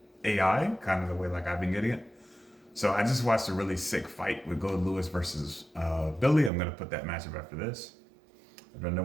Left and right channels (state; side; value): drops out; left; at 6.5 s